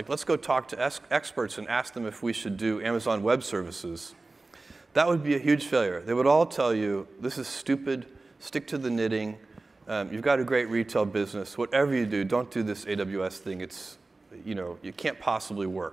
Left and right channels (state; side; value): quieter; left; 3.2 dB